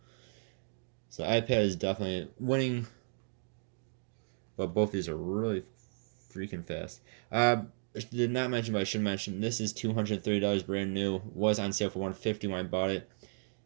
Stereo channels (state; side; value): silent; left; digital silence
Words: So the iPad is definitely winning, but both these are really freaking fast. Did not mention, but I should mention, this is $230 brand new. Was on sale for $150 when I bought it.